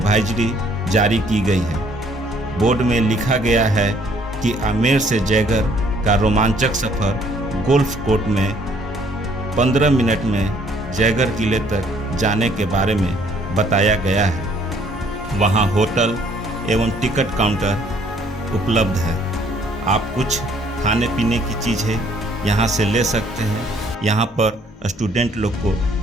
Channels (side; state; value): both; normal; correlation 0.62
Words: जारी की गई है। बोर्ड में लिखा गया है कि आमेर से जयगढ़ का रोमांचक सफ़र गोल्फ कोर्ट में 15 मिनट में जयगढ़ किले तक जाने के बारे में बताया गया है। वहाँ होटल एवं टिकट काउंटर उपलब्ध है। आप कुछ खाने पीने की चीज़ें यहाँ से ले सकते हैं। यहाँ पर स्टूडेंट लोग को